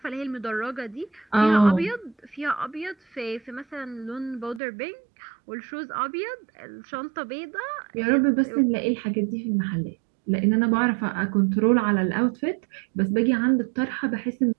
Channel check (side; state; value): left; drops out; at 4.6 s